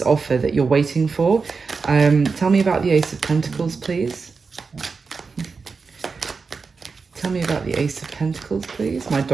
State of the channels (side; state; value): left; quieter; 4.8 dB